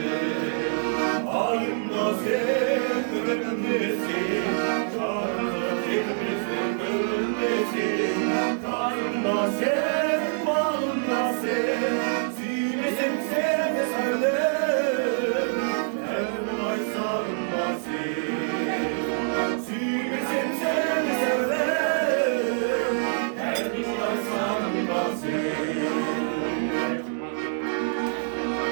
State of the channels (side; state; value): left; silent; digital silence